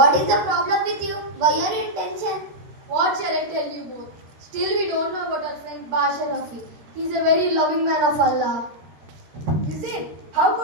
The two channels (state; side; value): late; left; 13 ms